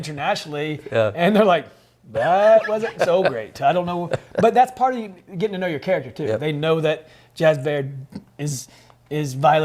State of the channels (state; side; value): identical; both; correlation 1.00